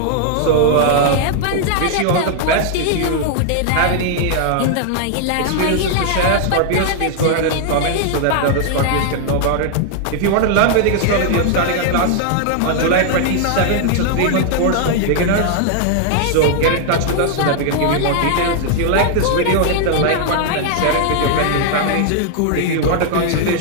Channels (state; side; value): different; both; correlation 0.00